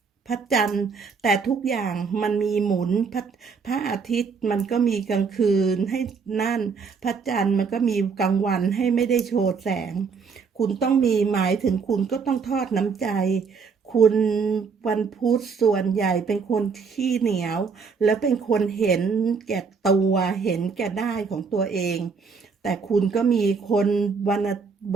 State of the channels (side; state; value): left; quieter; 5.4 dB